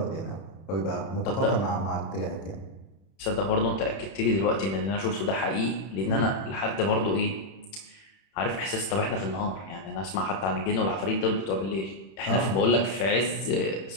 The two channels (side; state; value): right; late; 31 ms